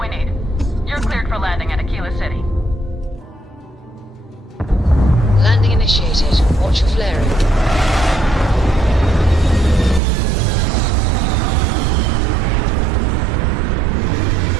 we need. You're cleared for landing at Aquila City. Landing initiated. Watch your flaring.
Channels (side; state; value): left; drops out; at 10.0 s